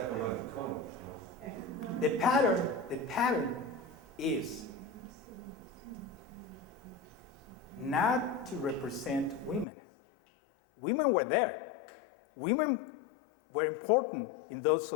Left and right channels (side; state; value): right; drops out; at 9.7 s